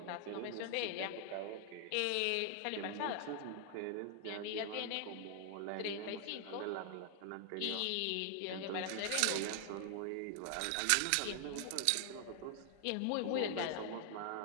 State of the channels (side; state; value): both; different; correlation 0.00